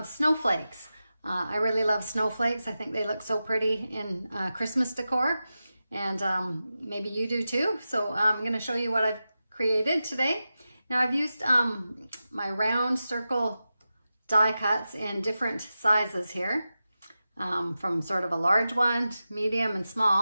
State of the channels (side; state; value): both; inverted; correlation -0.93